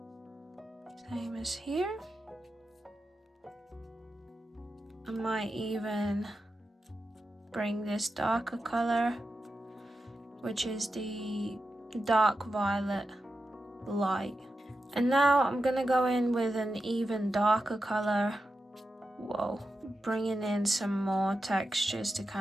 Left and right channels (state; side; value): normal; both; correlation 0.90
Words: Same as here. I might even bring this darker color, which is the dark violet light. And now I'm gonna go in with an even darker color. Whoa, bringing in some more textures to